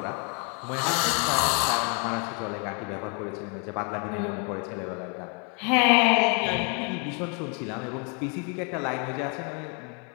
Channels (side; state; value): right; quieter; 36.7 dB